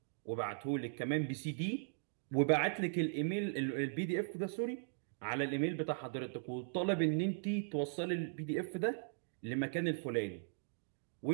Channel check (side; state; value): left; silent; digital silence